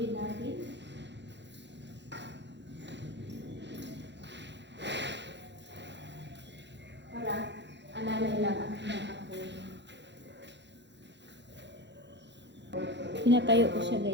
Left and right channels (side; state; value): left; late; 0.52 ms